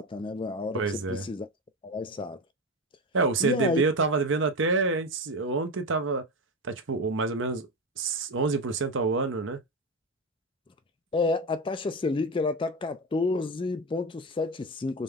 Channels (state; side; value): normal; both; correlation 0.19